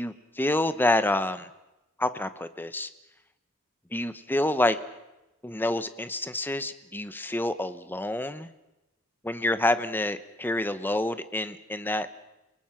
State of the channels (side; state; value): both; normal; correlation 0.69